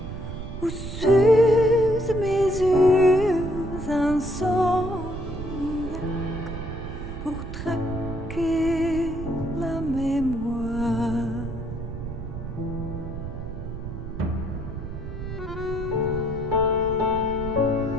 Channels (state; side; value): noise; right; rumble, 8 dB below the sound